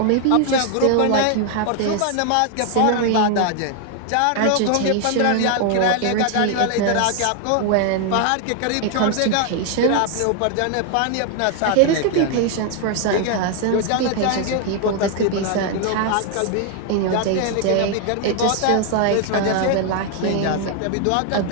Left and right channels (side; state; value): both; different; correlation 0.00